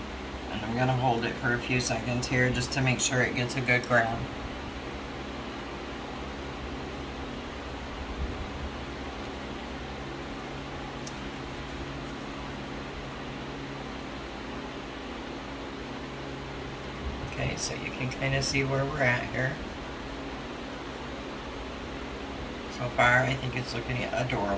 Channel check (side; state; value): both; identical; correlation 1.00